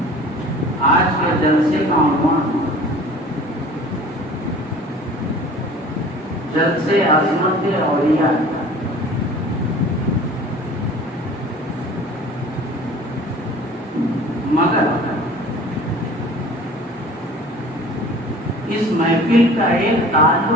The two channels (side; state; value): both; normal; correlation 0.45